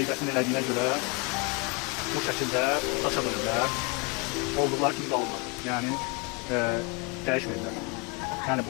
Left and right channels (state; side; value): quieter; right; 29.2 dB